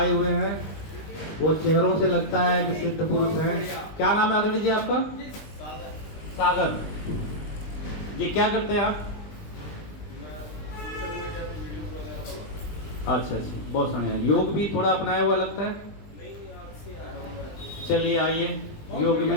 हुए हैं, वो चेहरों से लगता है कि सिद्ध पुरुष हैं। क्या नाम है आदरणीय जी आपका? सागर जी। क्या करते हैं आप? अच्छा अच्छा, बहुत बढ़िया। योग भी थोड़ा अपनाया हुआ लगता है। चलिए आइए योग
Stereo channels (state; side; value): late; right; 20 ms